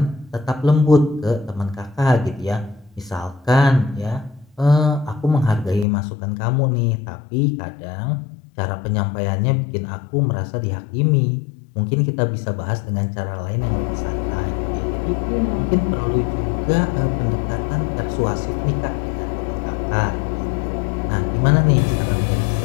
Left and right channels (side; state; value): right; drops out; at 5.9 s